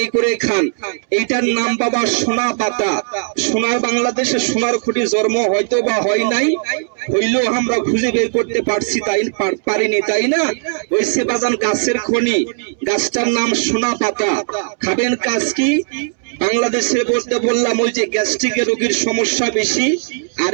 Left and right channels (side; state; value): left; silent; 68 dB below the other